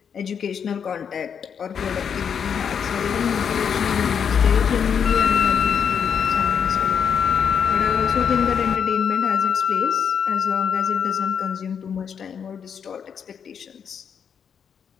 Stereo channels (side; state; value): right; quieter; 7.3 dB